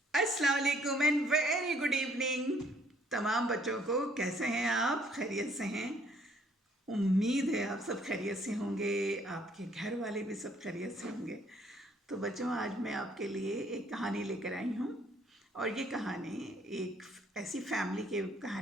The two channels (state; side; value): normal; both; correlation 0.64